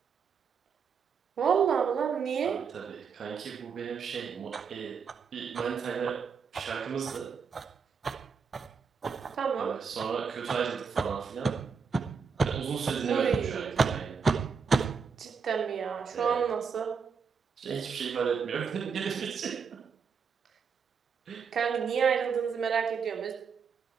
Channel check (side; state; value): left; quieter; 5.9 dB